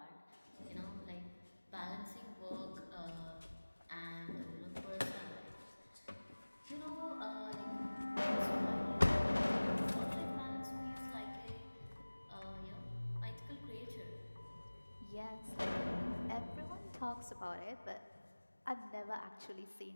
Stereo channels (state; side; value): inverted; both; correlation -1.00